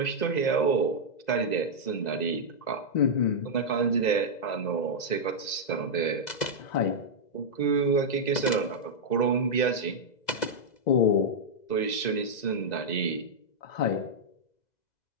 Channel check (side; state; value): right; late; 2.0 ms